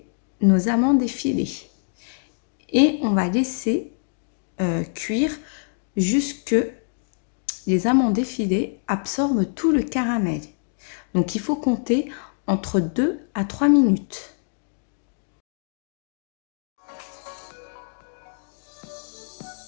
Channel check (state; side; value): silent; right; digital silence